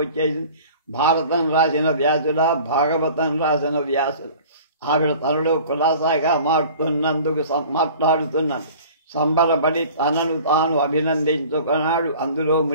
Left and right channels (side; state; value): both; inverted; correlation -0.45